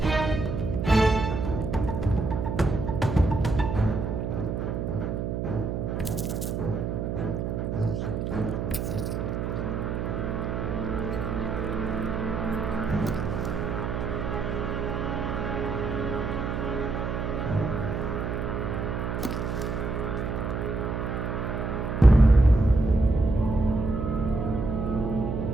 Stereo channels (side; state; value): right; noise; hum, 2 dB below the sound